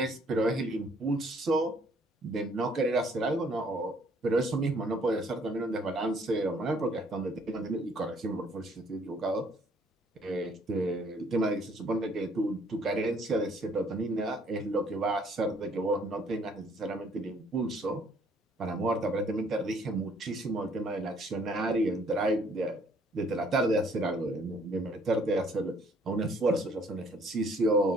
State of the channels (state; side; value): normal; both; correlation 0.62